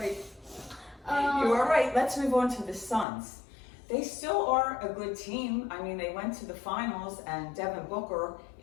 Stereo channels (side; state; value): right; drops out; at 3.1 s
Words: You are right. Let's move on to the Suns. They still are a good team. I mean, they went to the finals, and Devin Booker